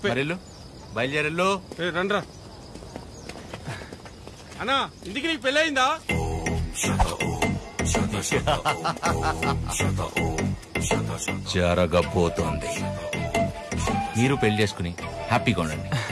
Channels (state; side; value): identical; both; correlation 1.00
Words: మరి బయలుదేరెళ్ళు. రండ్రా అన్నా, ఇంటికి నీకు పెళ్ళి అయిందా? జరగబోతోంది. మీరు పెళ్లి చేసుకుని హ్యాపీగా ఉండండి.